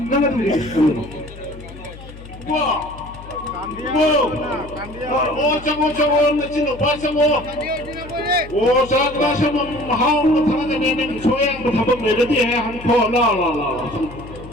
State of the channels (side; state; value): left; noise; hum, 16 dB below the sound